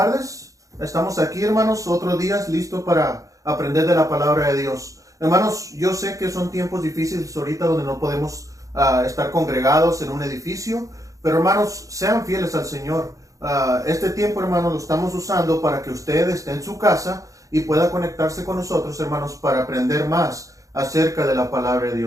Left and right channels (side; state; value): left; late; 0.16 ms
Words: Estamos aquí, hermanos, otro día listo para aprender de la palabra de Dios. Hermanos, yo sé que son tiempos difíciles ahorita donde no podemos estar congregados en un edificio, pero hermanos, sean fieles al Señor. Este tiempo, hermanos, lo estamos usando para que usted esté en su casa y pueda conectarse con nosotros, hermanos, para aprender más acerca de la palabra de